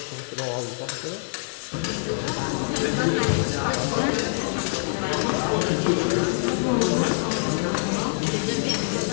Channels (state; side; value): silent; right; digital silence